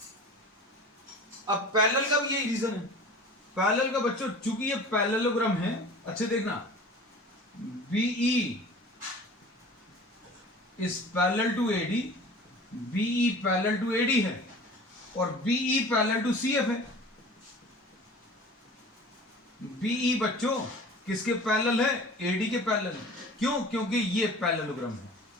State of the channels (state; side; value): normal; both; correlation 0.41